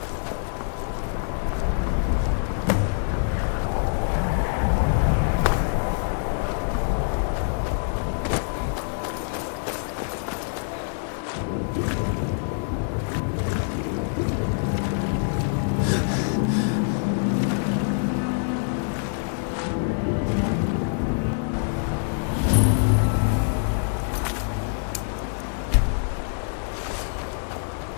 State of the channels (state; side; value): silent; right; digital silence